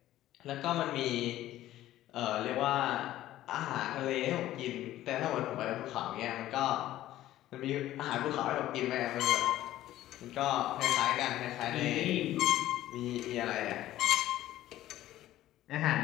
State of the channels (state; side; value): quieter; right; 14.2 dB